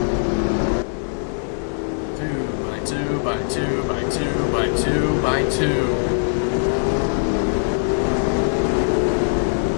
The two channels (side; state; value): right; silent; digital silence